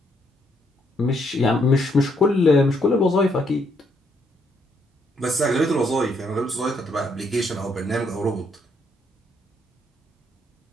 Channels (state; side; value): normal; both; correlation 0.73